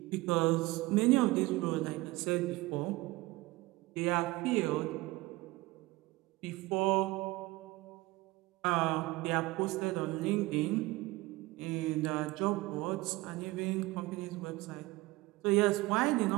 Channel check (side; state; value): left; quieter; 20.3 dB